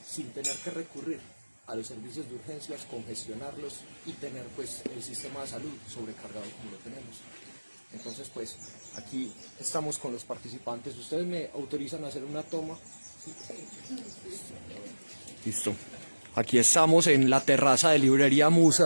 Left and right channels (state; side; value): inverted; both; correlation -1.00